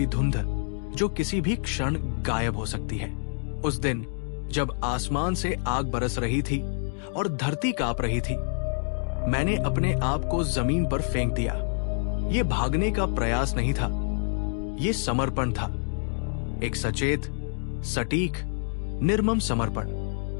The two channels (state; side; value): silent; right; digital silence